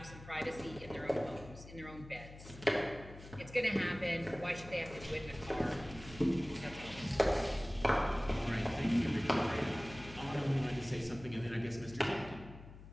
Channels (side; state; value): left; noise; hum, 16 dB below the sound